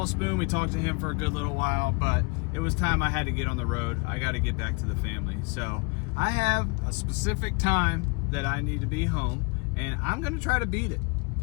Spoon, we talked to him for a good little while, but it was time I had to get on the road. I got to get back to the family. So I have a specific time that I need to be home, and I'm gonna try to beat it.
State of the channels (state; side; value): quieter; right; 31.8 dB